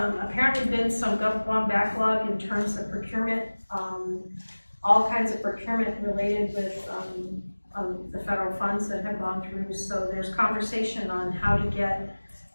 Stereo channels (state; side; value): inverted; both; correlation -1.00